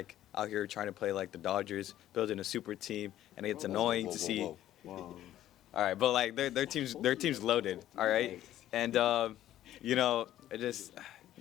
out here trying to play like the Dodgers, building a super team, and it's annoying to see. All right, but like their team's loaded. All right, and it just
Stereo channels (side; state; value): right; quieter; 12.9 dB